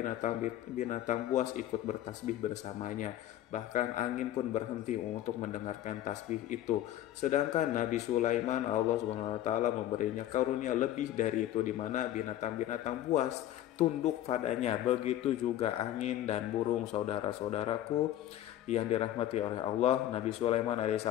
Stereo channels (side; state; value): right; quieter; 12.7 dB